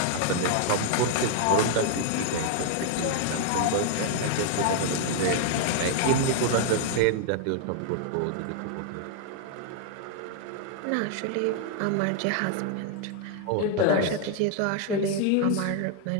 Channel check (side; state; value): both; different; correlation 0.00